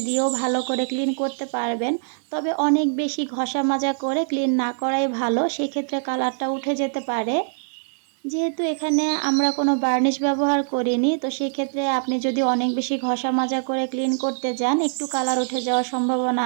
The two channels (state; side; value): silent; left; digital silence